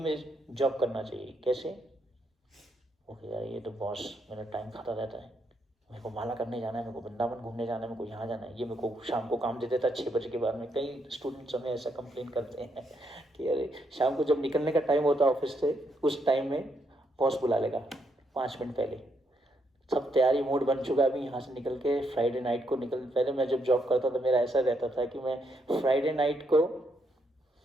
जॉब करना चाहिए, कैसे, ओके यार ये तो बॉस मेरा टाइम खाता रहता है, मेरे को माला करने जाना है, मेरे को वृंदावन घूमने जाना है, मेरे को यहाँ जाना है, ये मेरे को शाम को काम दे देता है 6 बजे के बाद में। कई स्टूडेंट्स हमें ऐसा कंप्लेन करते हैं कि अरे शाम को जब निकलने का टाइम होता है ऑफिस से, उस टाइम में बॉस बुला लेगा 5 मिनट पहले, सब तैयारी मूड बन चुका है, अभी यहाँ से निकल के फ्राइडे नाइट को पहले मैं जब जॉब करता था मेरा ऐसा रहता था कि मैं फ्राइडे नाइट को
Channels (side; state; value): both; normal; correlation 0.76